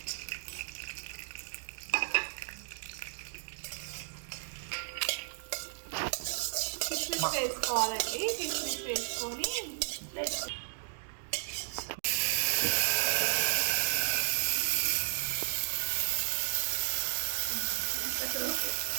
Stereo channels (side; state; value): left; silent; digital silence